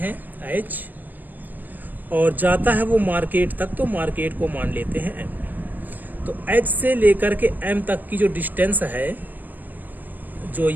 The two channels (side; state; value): left; late; 0.088 ms